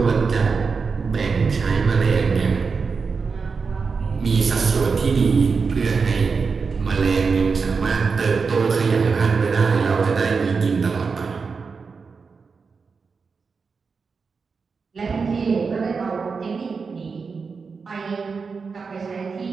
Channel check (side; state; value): left; quieter; 5.0 dB